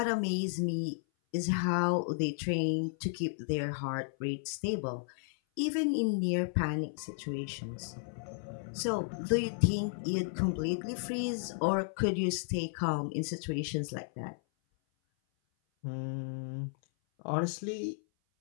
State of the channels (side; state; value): right; silent; 55 dB below the other